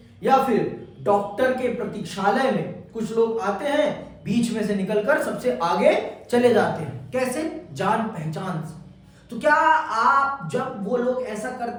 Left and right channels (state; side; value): identical; both; correlation 1.00